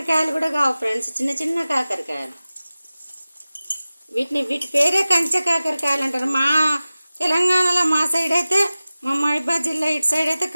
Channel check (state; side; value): inverted; both; correlation -0.97